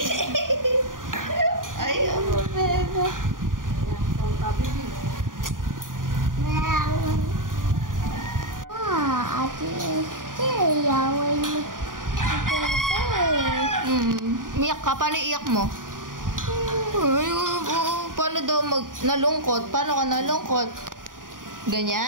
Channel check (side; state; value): left; late; 0.89 ms